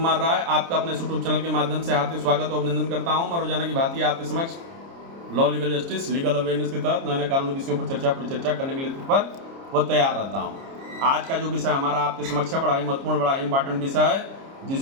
राय आपका अपने यूट्यूब चैनल के माध्यम से हार्दिक स्वागत और अभिनंदन करता हूं। मैं रोजाना की भांति आपके समक्ष law legal justice legal awareness के तहत नए नए कानूनी विषयों पर परिचर्चा करने के लिए तत्पर व तैयार रहता हूं। आज का जो विषय हमारा आपके समक्ष है बड़ा ही महत्वपूर्ण, बड़ा ही इंपॉर्टेंट विषय है,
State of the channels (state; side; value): late; left; 30 ms